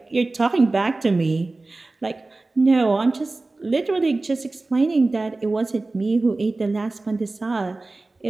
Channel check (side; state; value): left; quieter; 3.2 dB